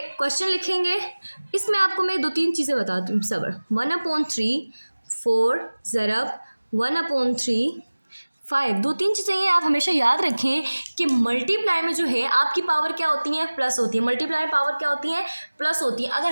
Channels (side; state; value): both; inverted; correlation -1.00